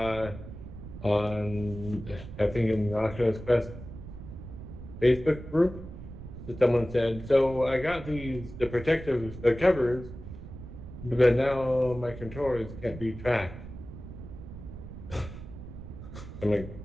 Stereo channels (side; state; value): right; noise; rumble, 12 dB below the sound